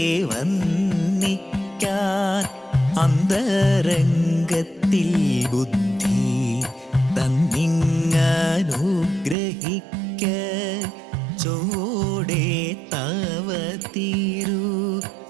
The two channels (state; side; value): drops out; left; at 9.3 s